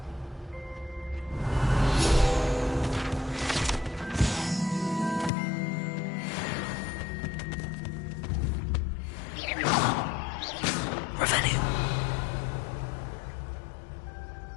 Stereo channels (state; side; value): drops out; right; at 5.3 s